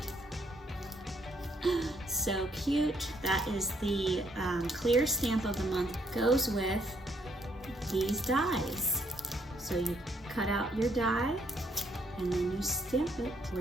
So cute. That is the clear stamp of the month. Goes with these dies. So you cut out your die and then you stamp it, or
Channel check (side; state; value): both; normal; correlation 0.71